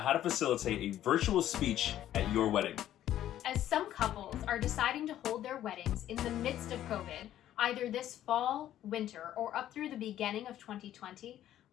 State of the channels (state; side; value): quieter; right; 12.2 dB